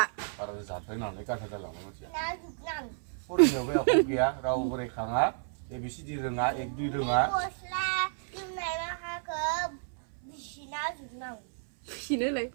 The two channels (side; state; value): left; silent; 57 dB below the other